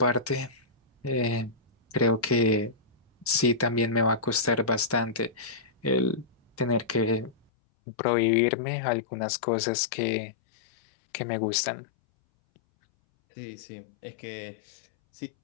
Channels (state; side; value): drops out; right; at 7.4 s